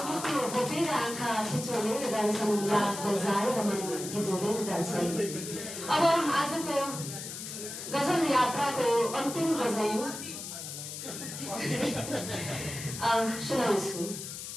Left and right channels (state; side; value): noise; left; hiss, 8 dB below the sound